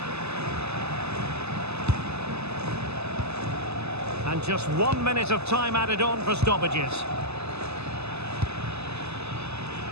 And just 1 minute of time added on for stoppages.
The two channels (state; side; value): late; left; 0.79 ms